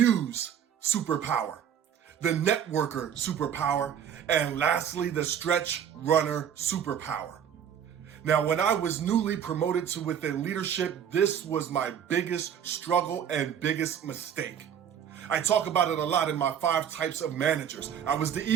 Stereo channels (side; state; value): left; quieter; 8.8 dB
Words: superpower, the networker superpower, and lastly, the stretch runner superpower. Now, when I was newly promoted to within leadership, this was my biggest struggle and biggest mistake. I talk about it a lot in my 5 types of managers. I was the